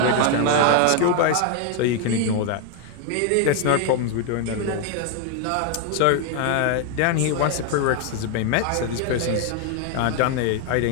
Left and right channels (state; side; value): different; both; correlation 0.00